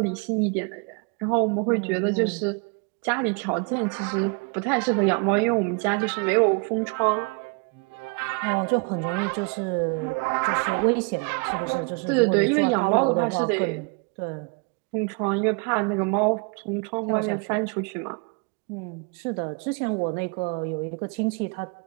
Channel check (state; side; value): quieter; left; 32.8 dB